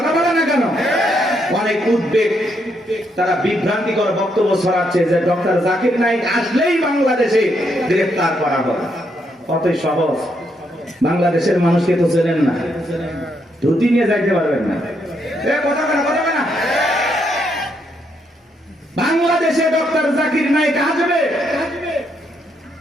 বলে না কেন? অনেক উদ্বেগ, তারা বিভ্রান্তিকর বক্তব্য ছড়াচ্ছে যে ডক্টর জাকির নায়েক আসলেই বাংলাদেশে গ্রেফতার করা হবে। কতই সহজ। বাংলাদেশের মানুষকে তো চেনেন না, ধুতি নিয়ে যাইতে পারবেন না। কথা বলে, কথা বলে না। বাংলাদেশে ডক্টর জাকির নায়েক আসবে,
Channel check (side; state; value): both; normal; correlation 0.76